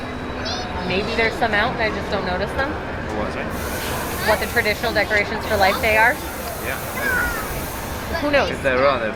Maybe there's some out and I just don't notice them. What's it? What the traditional decorations for Life Day are? Yeah. Who knows? If there are, they're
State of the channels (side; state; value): both; identical; correlation 1.00